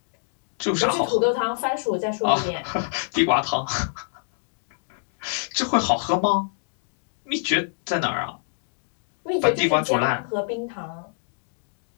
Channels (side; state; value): right; silent; digital silence